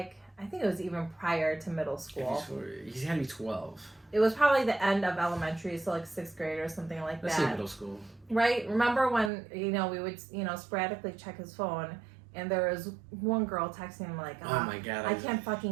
I think it was even prior to middle school. He's had to be 12. It was probably the end of elementary, so like 6th grade or something like Let's that. say middle school. Right? Remember when, we would, sporadically check his phone and there was one girl texting him like, oh my God. I can't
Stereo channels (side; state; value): left; drops out; at 9.3 s